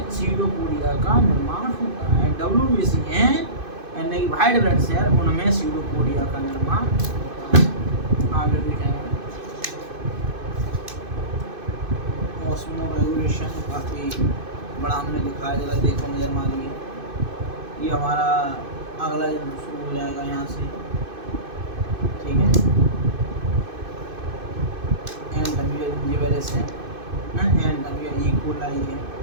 सीडोपोडिया का निर्माण होता है। WBC है यानी कि वाइट ब्लड सेल, उनमें सीडोपोडिया का निर्माण होता है। आगे देखेंगे ऑस्मो रेगुलेशन, काफ़ी बड़ा हमने लिखा है, जरा देखो नज़र मारिए। ये हमारा अगला शुरू हो जाएगा यहाँ से, ठीक है। ई कोलाई है।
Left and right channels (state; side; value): late; left; 2.5 ms